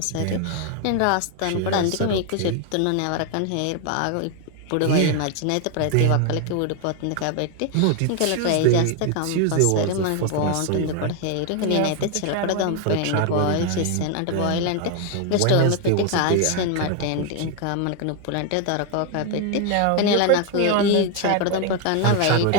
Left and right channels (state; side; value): different; both; correlation 0.01